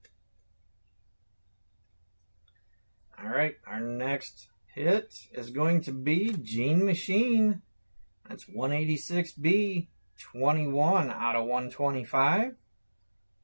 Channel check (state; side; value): inverted; both; correlation -1.00